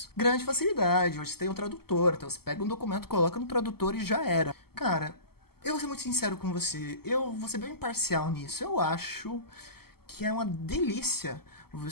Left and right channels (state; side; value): late; right; 0.95 ms